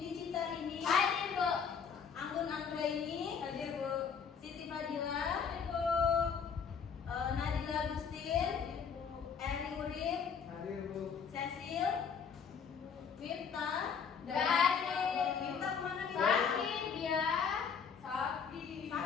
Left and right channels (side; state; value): right; quieter; 6.5 dB